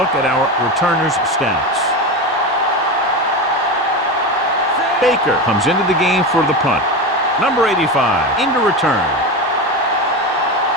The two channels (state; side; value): normal; both; correlation 0.21